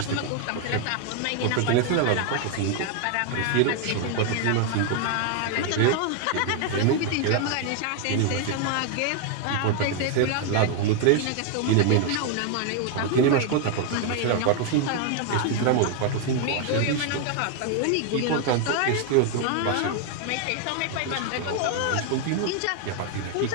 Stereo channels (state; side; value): different; both; correlation 0.00